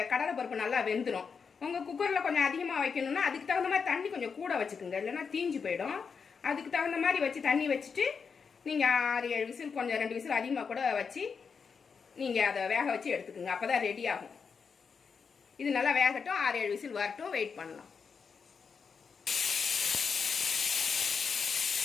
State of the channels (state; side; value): quieter; right; 5.8 dB